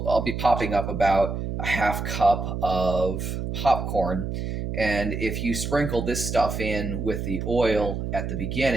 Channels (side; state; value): right; noise; hum, 4 dB below the sound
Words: be popping up about a half cup of popcorn, and if you sprinkle this stuff in with the oil at the